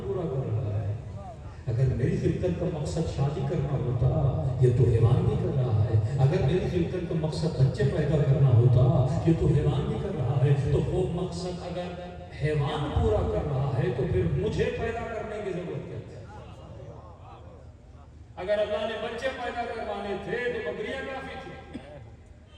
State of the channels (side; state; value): both; identical; correlation 1.00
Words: پورا کر رہا ہے، اگر میری خلقت کا مقصد شادی کرنا ہوتا یہ تو حیوان بھی کر رہا ہے، اگر میری خلقت کا مقصد بچے پیدا کرنا ہوتا یہ تو حیوان بھی کر رہا ہے۔ تو وہ مقصد اگر حیوان پورا کر رہا ہے تو پھر مجھے پیدا کرنے کی ضرورت کیا ہے؟ اگر اللہ نے بچے پیدا کروانے تھے تو بکریاں کافی تھی،